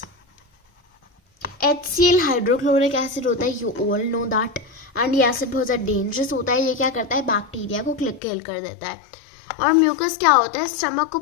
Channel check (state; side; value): drops out; right; at 8.2 s